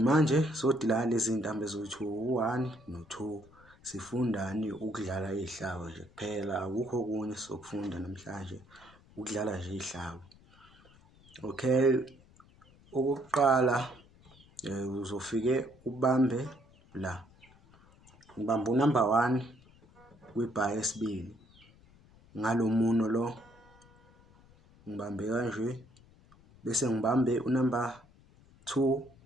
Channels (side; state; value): left; noise; rumble, 26 dB below the sound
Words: sodila lezi zintambo ezothi u1 no2 sifundani ukudlala izihlabo nje kuphela, akukho okunye sokufunda namhlanje, ukudlala nje izihlabo. Okay, okokuqala uzofike ubambe la, ngibamba unumber 1 kwibar yesibili ngalo muno lo, ngibambe kanje bese ngibambe unumber 2